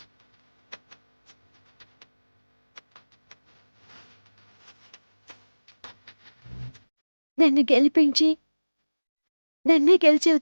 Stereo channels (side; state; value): both; inverted; correlation -1.00